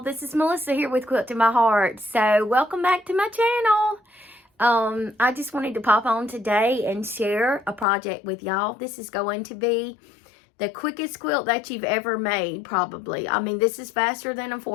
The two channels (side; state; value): right; drops out; at 7.9 s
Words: is Melissa here with Quilt in My Heart. So welcome back to my channel. I just wanted to pop on today and share a project with y'all. This is going to be the quickest quilt that you've ever made, probably. I mean, this is faster than a